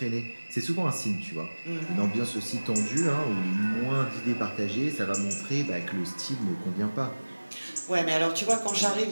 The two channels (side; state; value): both; inverted; correlation -1.00